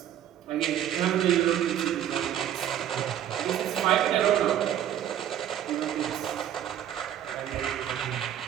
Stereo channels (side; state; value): left; quieter; 10.8 dB